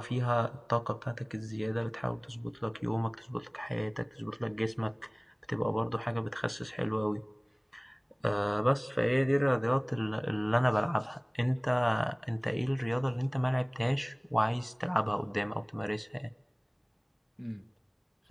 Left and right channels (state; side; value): identical; both; correlation 1.00